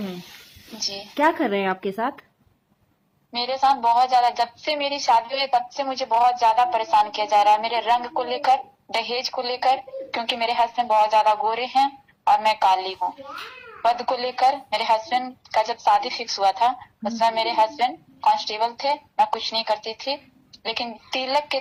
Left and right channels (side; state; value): both; identical; correlation 1.00